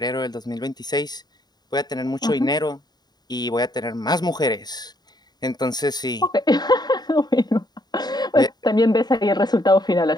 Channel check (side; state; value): right; late; 0.20 ms